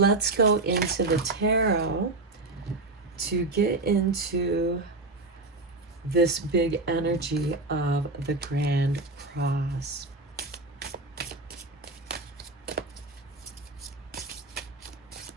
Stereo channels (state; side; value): quieter; left; 3.1 dB